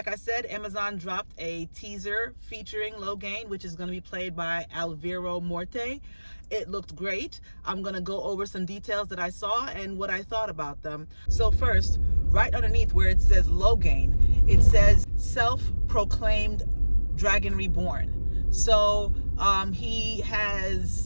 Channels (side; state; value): both; inverted; correlation -1.00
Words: I said, Amazon dropped a teaser featuring Logain, which is going to be played by Alvaro Morte. It looked great. I'm going to go over some details that I saw and what I thought about them. So first, right underneath where it says Logain, it says self-proclaimed Dragon Reborn. So he